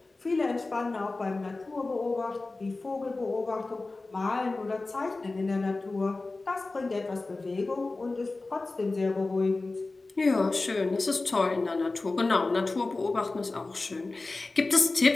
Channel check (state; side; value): quieter; right; 3.4 dB